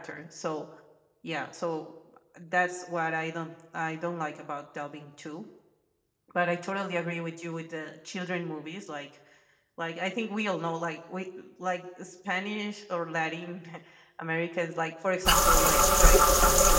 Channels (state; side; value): identical; both; correlation 1.00